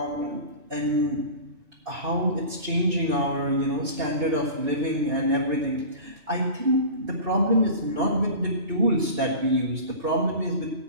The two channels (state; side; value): late; left; 2.2 ms